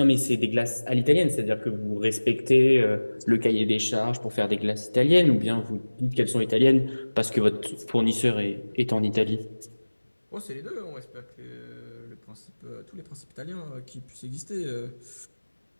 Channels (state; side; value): inverted; both; correlation -1.00